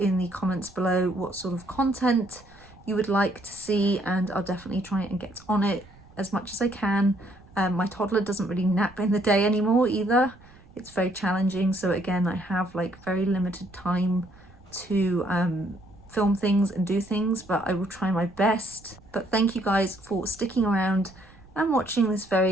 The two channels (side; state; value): right; noise; rumble, 24 dB below the sound